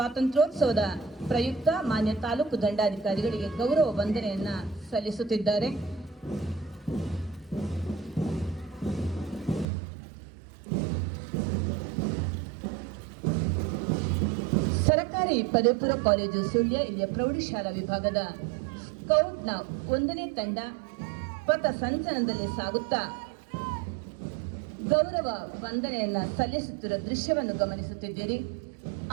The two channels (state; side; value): drops out; left; at 9.7 s